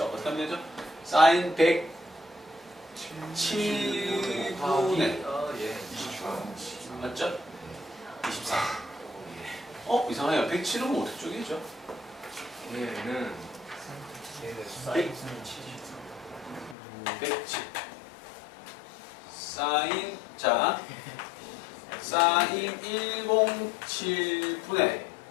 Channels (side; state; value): right; drops out; at 16.8 s